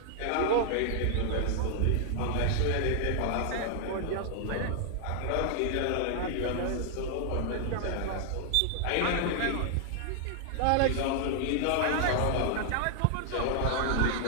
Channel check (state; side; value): different; both; correlation 0.00